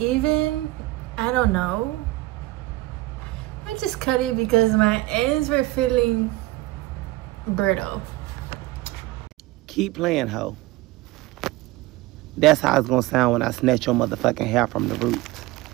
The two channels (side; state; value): left; quieter; 18.8 dB